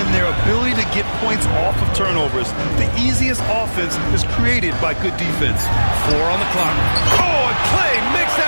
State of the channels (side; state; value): both; inverted; correlation -1.00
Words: their ability to get points off of turnovers. The easiest offense is created by good defense. 4 on the clock. Oh, and Clay makes